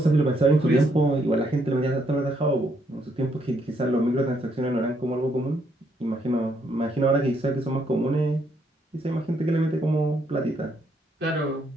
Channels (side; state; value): both; normal; correlation 0.73